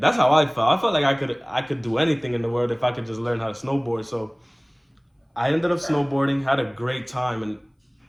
how I felt. I felt like I could do anything in the world if I could just learn how to snowboard. So I ended up snowboarding, had a great time, and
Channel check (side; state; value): both; identical; correlation 1.00